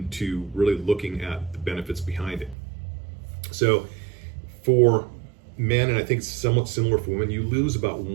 really looking at the benefits behind it. So for men, and I think it's somewhat similar for women, you lose about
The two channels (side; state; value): left; drops out; at 2.6 s